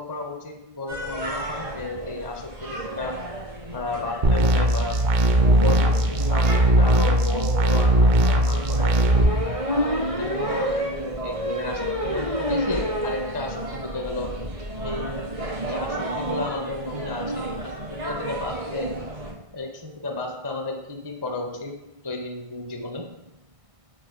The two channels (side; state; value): left; late; 1.6 ms